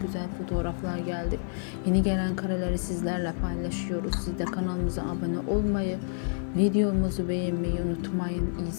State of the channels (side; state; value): right; silent; digital silence